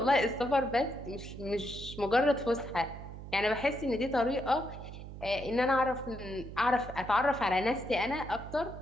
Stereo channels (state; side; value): noise; right; hum, 12 dB below the sound